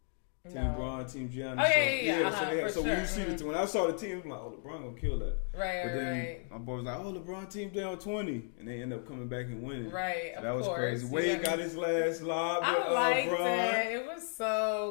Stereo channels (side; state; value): right; silent; 55 dB below the other